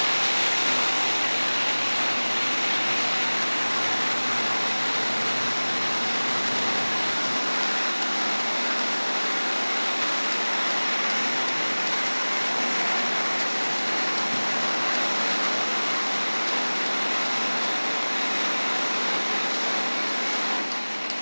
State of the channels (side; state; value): both; inverted; correlation -1.00